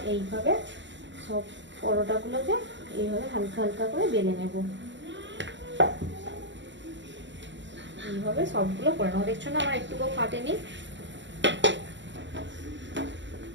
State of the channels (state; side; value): late; left; 0.53 ms